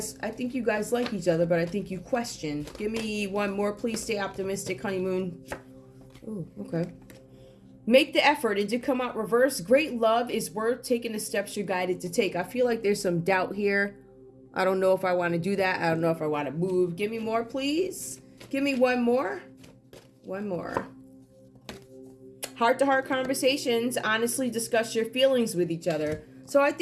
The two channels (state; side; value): identical; both; correlation 1.00